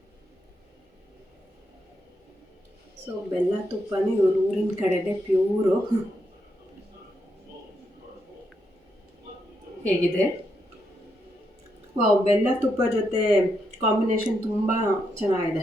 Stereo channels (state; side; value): normal; both; correlation 0.81